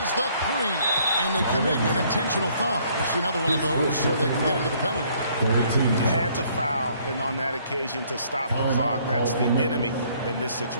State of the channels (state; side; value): inverted; both; correlation -0.63